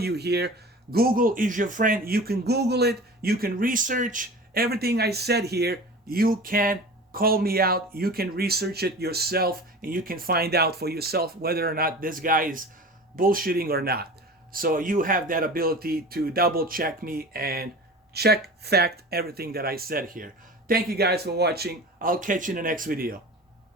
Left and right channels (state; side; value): normal; both; correlation 0.36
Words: here, Google is your friend. You can Google it. You can research everything I said here. You can call me out. You can research it yourself. And you can find out for yourself whether or not this guy is bullshitting or not. So you have that ability to double check me and check fact everything that I said here. Thank you guys for watching. I'll catch you in the next video.